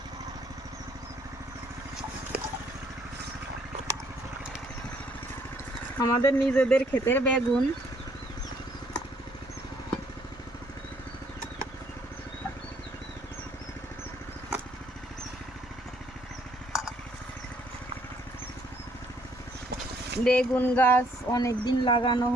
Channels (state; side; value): normal; both; correlation 0.66